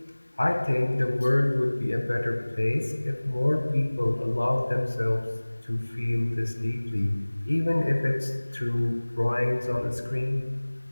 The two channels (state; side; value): inverted; both; correlation -1.00